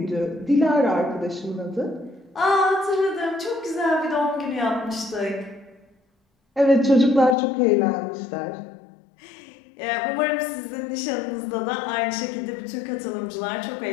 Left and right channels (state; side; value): drops out; right; at 7.4 s